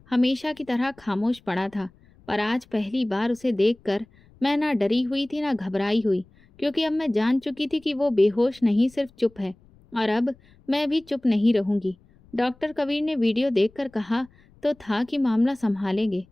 हमेशा की तरह खामोश पड़ा था, पर आज पहली बार उसे देखकर मैं ना डरी हुई थी ना घबराई हुई, क्योंकि अब मैं जान चुकी थी कि वो बेहोश नहीं, सिर्फ चुप है। और अब मैं भी चुप नहीं रहूंगी। डॉक्टर कबीर ने वीडियो देखकर कहा तो था कि मामला संभालेंगे,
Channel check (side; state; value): left; noise; rumble, 29 dB below the sound